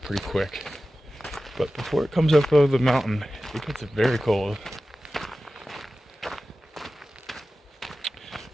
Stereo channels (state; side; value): normal; both; correlation 0.95